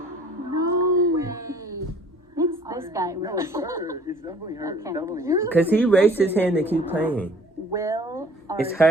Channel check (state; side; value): normal; both; correlation 0.53